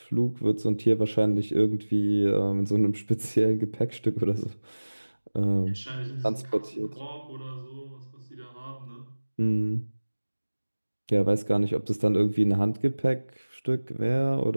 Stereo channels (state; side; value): inverted; both; correlation -1.00